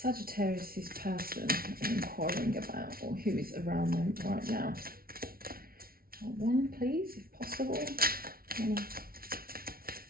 person inquiring about, or who is around them right now? One, please, if possible.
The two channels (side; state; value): left; late; 0.43 ms